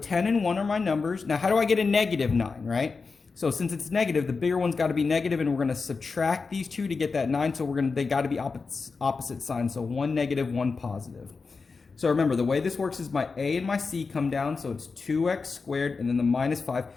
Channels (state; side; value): quieter; right; 4.6 dB